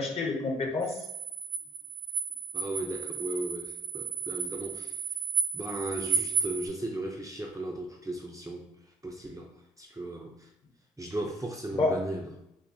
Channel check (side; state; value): both; normal; correlation 0.57